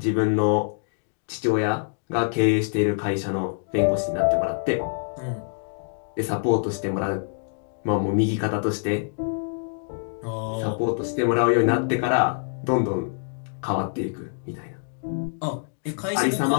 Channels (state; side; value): silent; right; digital silence